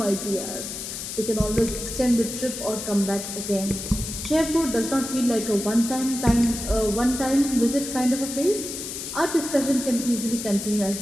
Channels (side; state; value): left; noise; hiss, 7 dB below the sound